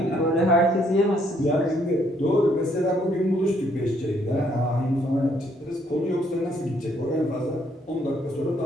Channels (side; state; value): both; normal; correlation 0.68